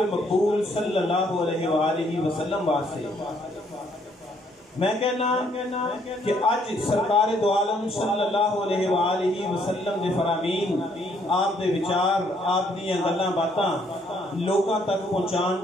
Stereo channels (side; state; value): both; normal; correlation 0.68